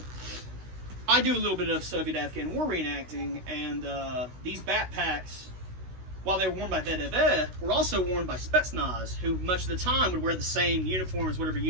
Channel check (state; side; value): late; left; 16 ms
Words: I do a little bit of Soviet-Afghan war reenacting, and these backpacks, while they were worn by VDV, were also worn by Spetsnaz, who much of the time would wear the same uniform as whatever